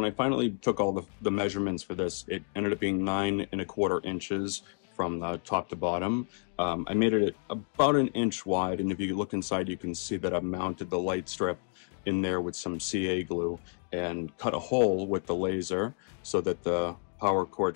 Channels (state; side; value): silent; right; 58 dB below the other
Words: I finally took all the measurements for this, it ended up being 9¼ inches from the top to bottom. I made it about 1 inch wide, and if you look inside, you can see that I've mounted the light strip in there with some CA glue and cut a hole with the laser so that the power